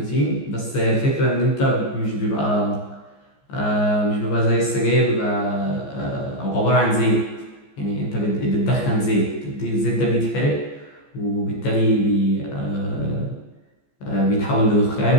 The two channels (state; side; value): late; right; 14 ms